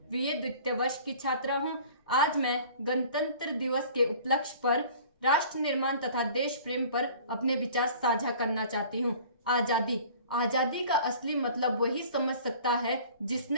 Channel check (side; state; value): both; inverted; correlation -0.47